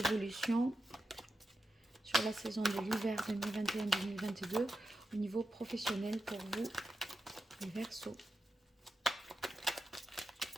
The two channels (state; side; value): normal; both; correlation 0.89